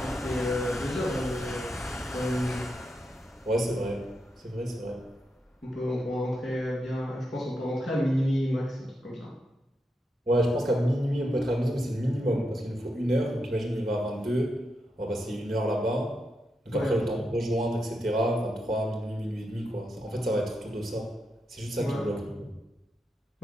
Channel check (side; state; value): both; normal; correlation 0.84